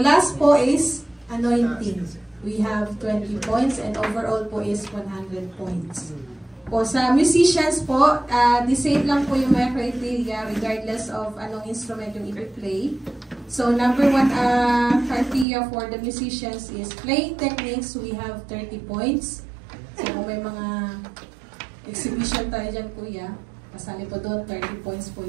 po is anointing. We have 20 points and overall po is 100 points. Po sa musicians po, the same lang po yung mga criteria regardless of anong instrument yung i-play. So number 1 criteria for the musicians is playing techniques. We have 30 points. So kung may mga exhibition tayo dyan, kuya, kasali po doon, 30 points po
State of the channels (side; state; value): left; drops out; at 15.5 s